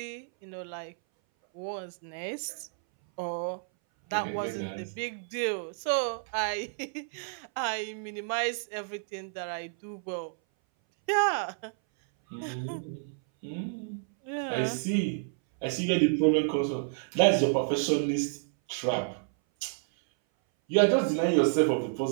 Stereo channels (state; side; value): silent; left; 58 dB below the other